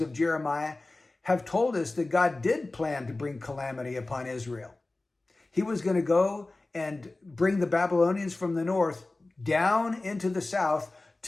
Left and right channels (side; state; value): right; quieter; 3.1 dB